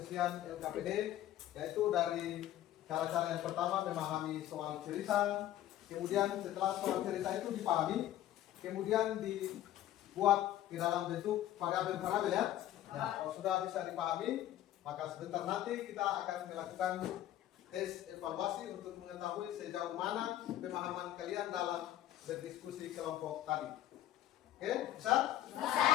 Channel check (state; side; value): quieter; right; 12.9 dB